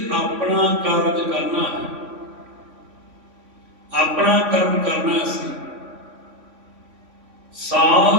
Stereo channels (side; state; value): left; late; 3.5 ms